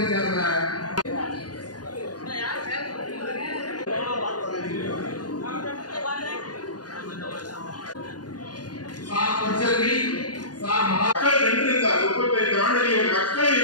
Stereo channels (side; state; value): right; late; 0.69 ms